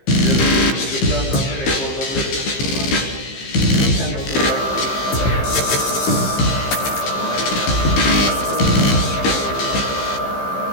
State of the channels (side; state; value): right; late; 15 ms